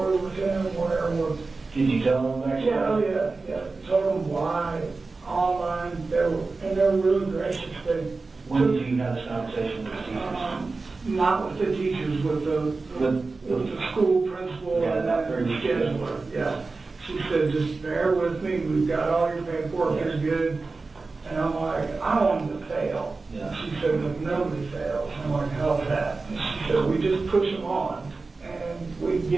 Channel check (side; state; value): left; quieter; 3.8 dB